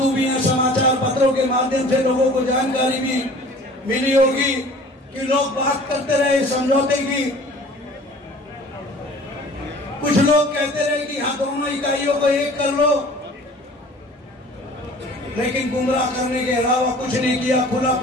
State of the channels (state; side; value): normal; both; correlation 0.47